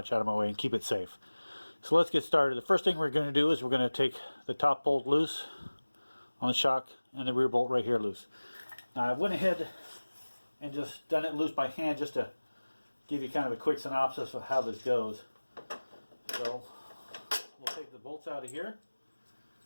out of my way and keep it safe. So let's get started. The first thing we're going to do is we're going to take the top bolt loose on the shock and the rear bolt right here loose. Now I went ahead and just done it loose by hand just to give you kind of a quick synopsis of how this goes. So we'll take the bolts out of here.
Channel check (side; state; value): both; inverted; correlation -1.00